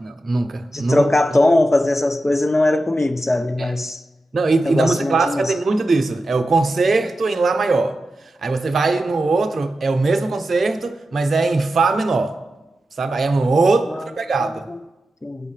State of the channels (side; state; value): both; normal; correlation 0.91